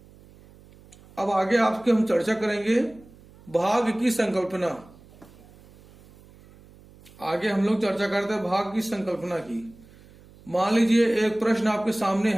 अब आगे आपके हम चर्चा करेंगे भाग की संकल्पना। आगे हम लोग चर्चा करते हैं भाग की संकल्पना की। मान लीजिए एक प्रश्न आपके सामने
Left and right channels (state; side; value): noise; right; hum, 24 dB below the sound